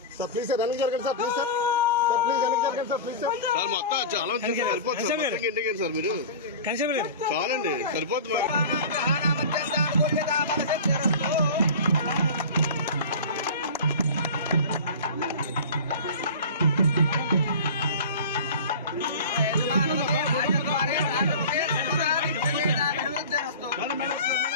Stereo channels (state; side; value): inverted; both; correlation -0.34